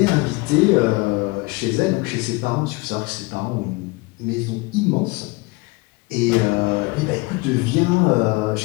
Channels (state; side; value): quieter; right; 24.8 dB